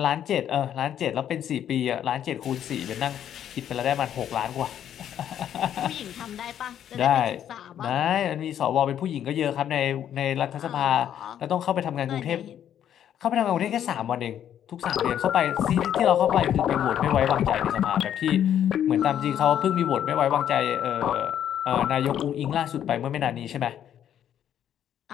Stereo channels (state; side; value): quieter; right; 10.1 dB